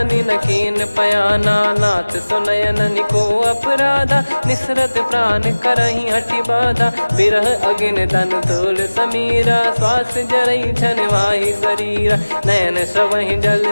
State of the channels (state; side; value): inverted; both; correlation -1.00